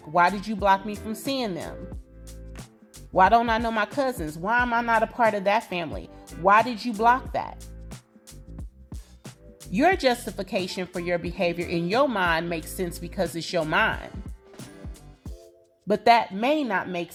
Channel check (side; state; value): both; identical; correlation 1.00